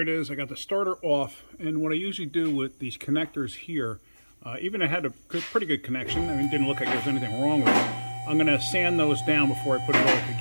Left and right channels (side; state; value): both; inverted; correlation -1.00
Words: is. I got the starter off, and what I usually do with these connectors here, even I had a pretty good connection, I mean, it didn't look like there was anything wrong with it. I'm going to sand those down before I put it all